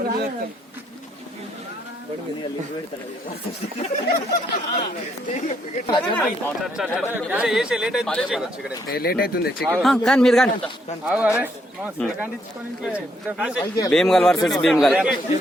Bheemgal versus Bheemgal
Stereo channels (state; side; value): normal; both; correlation 0.73